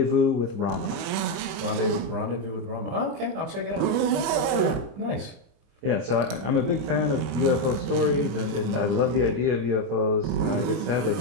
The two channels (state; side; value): late; left; 25 ms